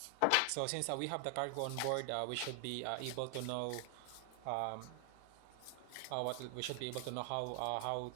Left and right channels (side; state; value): both; different; correlation 0.00